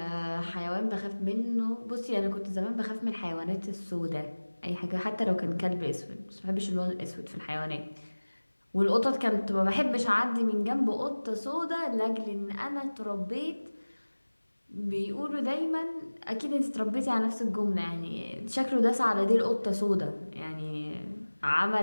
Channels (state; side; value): inverted; both; correlation -1.00